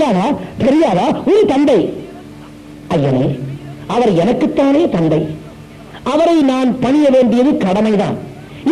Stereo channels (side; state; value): both; identical; correlation 1.00